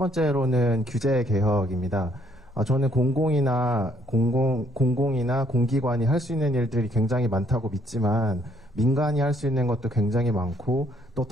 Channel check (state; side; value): normal; both; correlation 0.67